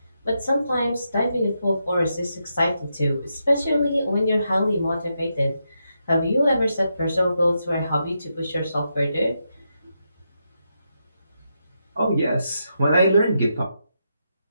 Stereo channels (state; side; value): inverted; both; correlation -0.84